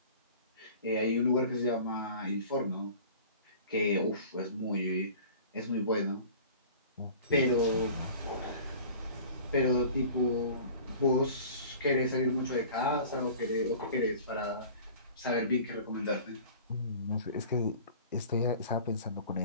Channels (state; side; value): inverted; both; correlation -0.43